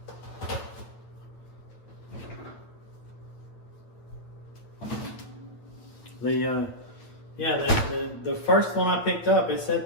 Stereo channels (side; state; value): right; late; 8.8 ms